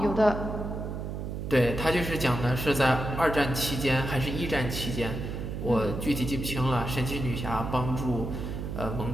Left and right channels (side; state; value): right; noise; hum, 5 dB below the sound